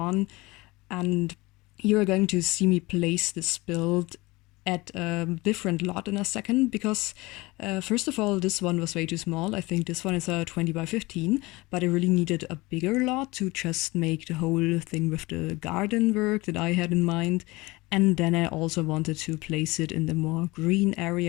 And you're going to see me place this build at a different lot in a second, because first of all, this one was way too small. I think this one is a 20 by 15, but I really needed a bigger lot to just make the whole thing with the garden work that I had in mind. And then I also wanted to place it in the more green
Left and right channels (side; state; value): right; quieter; 22.2 dB